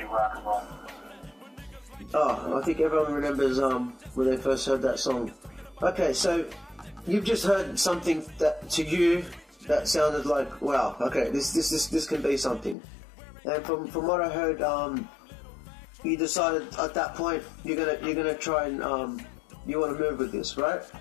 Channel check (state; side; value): drops out; right; at 12.8 s